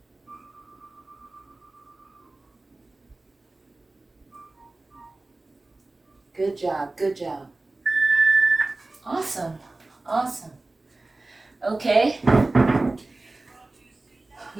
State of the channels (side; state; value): left; quieter; 3.1 dB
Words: Good job, good job. Awesome, awesome. Okay.